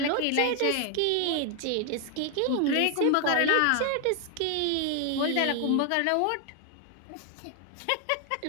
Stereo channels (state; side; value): different; both; correlation 0.00